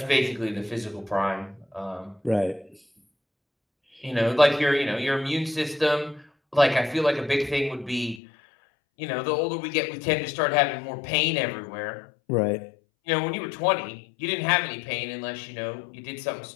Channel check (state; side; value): drops out; right; at 8.2 s